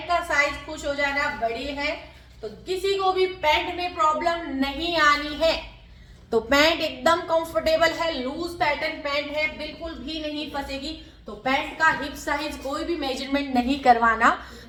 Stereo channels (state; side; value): identical; both; correlation 1.00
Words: का साइज खुश हो जाना, बड़ी है तो किसी को भी पैंट में प्रॉब्लम नहीं आनी है। तो पैंट एकदम कंफर्टेबल है, लूज पैटर्न पैंट है, बिल्कुल भी नहीं फंसेगी। तो पैंट का हिप साइज कोई भी मेजरमेंट नहीं करवाना,